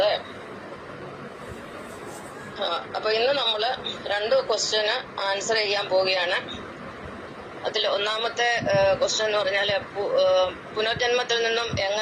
അപ്പൊ ഇന്ന് നമ്മള് 2 ക്വസ്റ്റ്യന് ആൻസർ ചെയ്യാൻ പോവുകയാണ്. അതിൽ ഒന്നാമത്തെ ക്വസ്റ്റ്യൻ എന്ന് പറഞ്ഞാൽ പുനർജന്മത്തിൽ നിന്നും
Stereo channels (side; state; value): both; identical; correlation 1.00